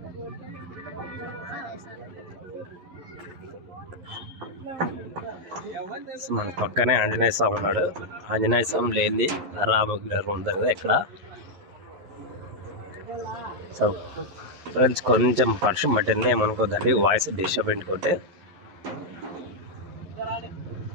మన పక్కనే ఆంజనేయ స్వామి ఉన్నాడు. ఆంజనేయ స్వామి లేనిది రామగిరి ఉంది కదా ఇక్కడ. సో ఫ్రెండ్స్, కొంచెం వర్షం పట్టింది, ఏమనుకోద్దండి, వాయిస్ డిస్టర్బ్ ఇంటుకుంటే.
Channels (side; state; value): left; late; 11 ms